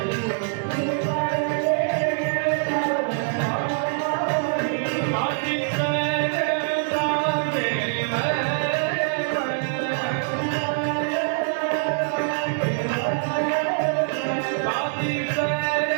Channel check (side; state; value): left; silent; 55 dB below the other